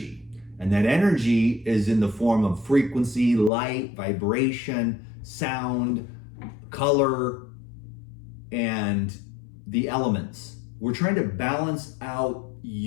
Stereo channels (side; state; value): right; drops out; at 3.5 s